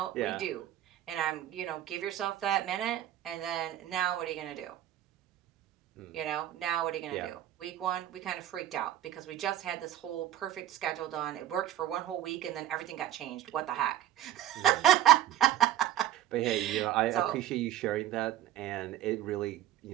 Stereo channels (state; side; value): quieter; left; 12.1 dB